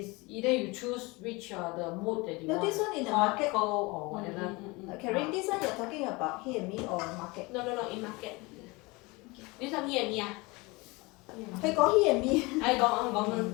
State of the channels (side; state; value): right; quieter; 24.8 dB